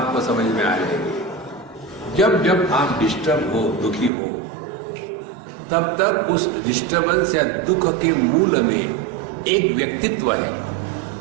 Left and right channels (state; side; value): drops out; left; at 4.1 s